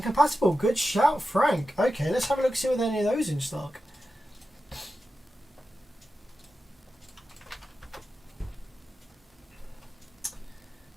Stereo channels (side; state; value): both; normal; correlation 0.92